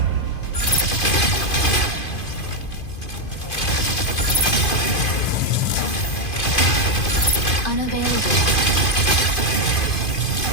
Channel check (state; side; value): late; right; 2.5 ms